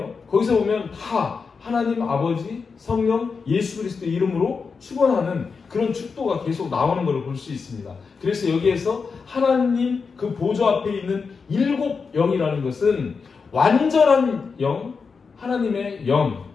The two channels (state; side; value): quieter; right; 5.2 dB